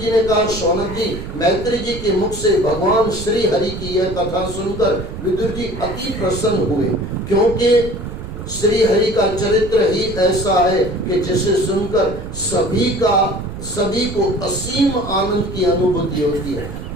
ने कहा, शौनक जी, मैत्री जी के मुख से भगवान श्री हरि की यह कथा सुनकर विदुर जी अति प्रसन्न हुए, क्योंकि श्री हरि का चरित्र ही ऐसा है कि जिसे सुनकर सभी को असीम आनंद की अनुभूति होती है।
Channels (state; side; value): noise; right; rumble, 9 dB below the sound